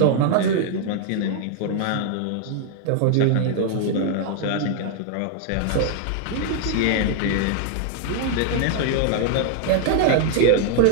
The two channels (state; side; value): different; both; correlation 0.00